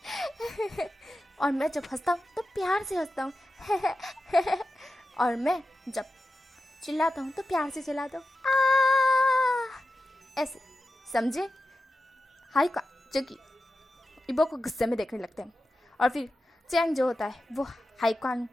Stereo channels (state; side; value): normal; both; correlation 0.92